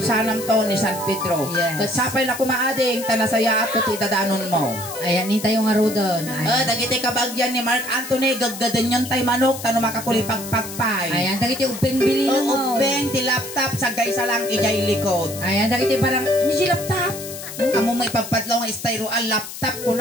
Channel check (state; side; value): noise; left; hiss, 11 dB below the sound